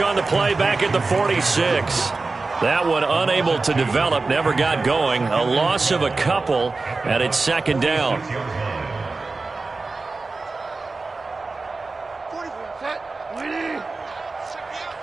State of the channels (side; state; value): left; quieter; 3.7 dB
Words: on the play back at the 46. That one unable to develop, never got going. A loss of a couple, and it's 2nd down.